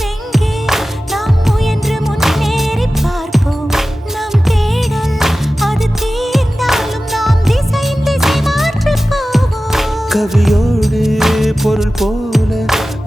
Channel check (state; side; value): normal; both; correlation 0.95